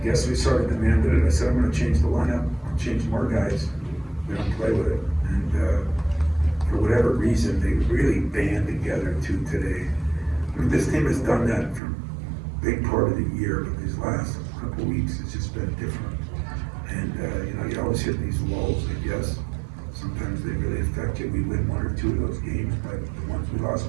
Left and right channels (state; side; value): drops out; left; at 11.8 s